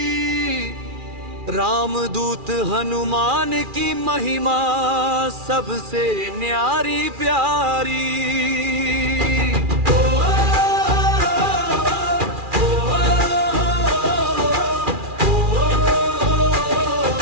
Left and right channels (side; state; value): left; late; 2.4 ms